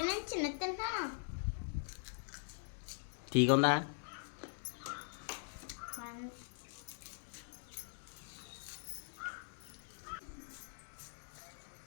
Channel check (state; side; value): silent; right; digital silence